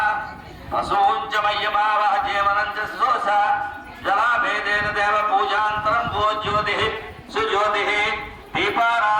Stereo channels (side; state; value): both; identical; correlation 1.00